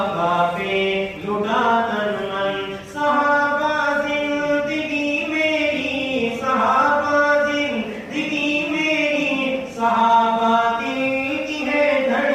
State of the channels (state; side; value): identical; both; correlation 1.00